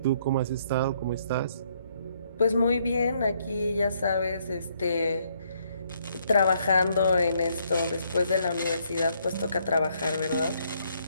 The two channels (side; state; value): both; inverted; correlation -0.71